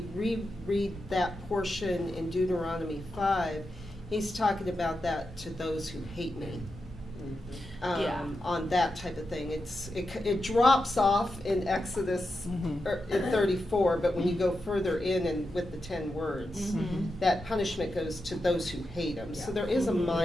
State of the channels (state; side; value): normal; both; correlation 0.88